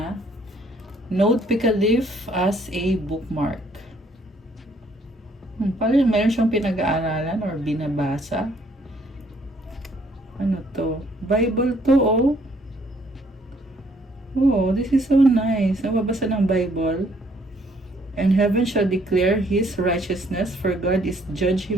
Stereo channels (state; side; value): normal; both; correlation 0.65